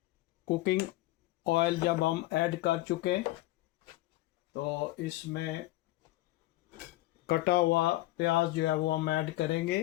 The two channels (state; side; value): quieter; right; 17.8 dB